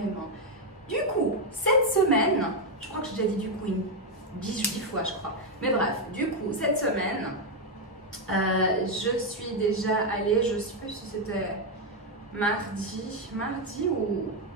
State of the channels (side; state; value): both; normal; correlation 0.03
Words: Du coup, cette semaine, je crois que j'ai déjà dit du coup 10 fois je crois, mais bref, du coup cette semaine je suis déjà allée, je ne sais plus si c'était mardi